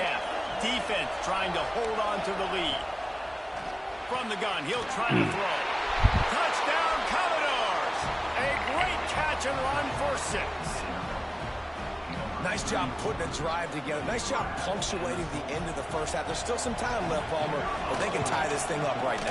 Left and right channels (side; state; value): both; identical; correlation 1.00